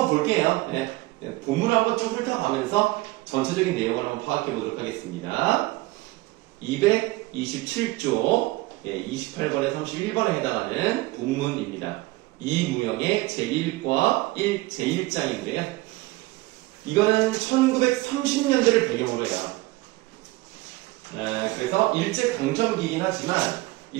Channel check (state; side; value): quieter; left; 20.6 dB